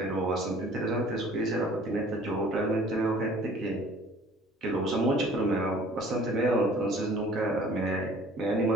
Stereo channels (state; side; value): normal; both; correlation 0.51